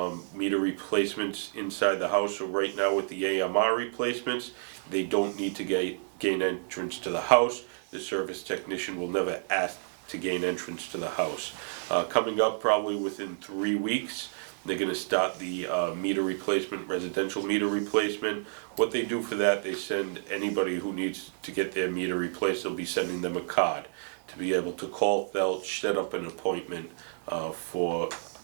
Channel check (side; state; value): left; silent; 58 dB below the other